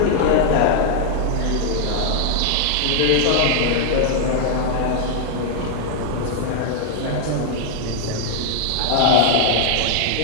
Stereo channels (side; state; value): both; different; correlation -0.01